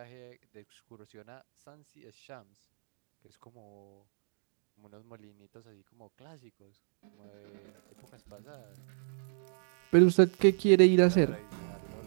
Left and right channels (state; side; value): silent; left; digital silence